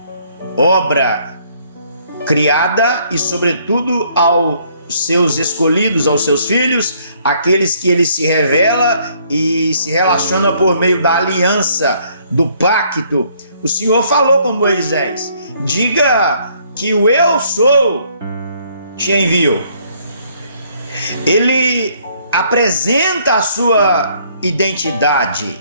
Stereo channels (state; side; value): inverted; both; correlation -0.65